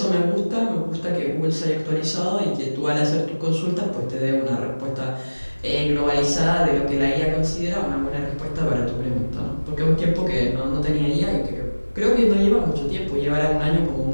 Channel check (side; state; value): both; inverted; correlation -1.00